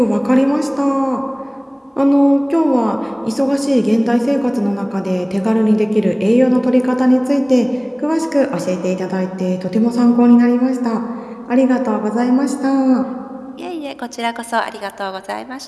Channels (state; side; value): identical; both; correlation 1.00